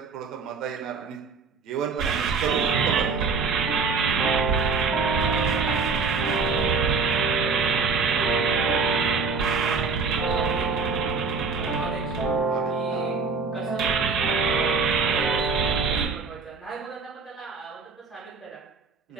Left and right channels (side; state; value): left; quieter; 4.8 dB